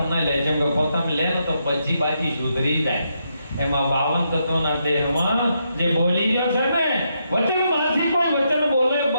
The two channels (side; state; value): both; inverted; correlation -0.80